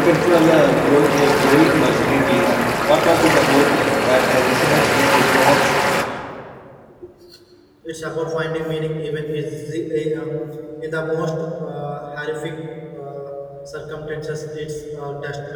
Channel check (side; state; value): both; identical; correlation 1.00